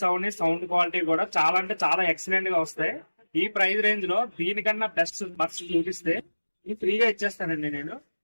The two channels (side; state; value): both; inverted; correlation -1.00